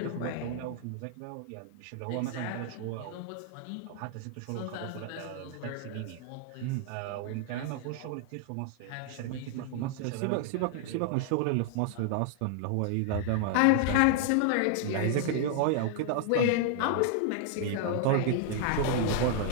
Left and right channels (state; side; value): different; both; correlation 0.00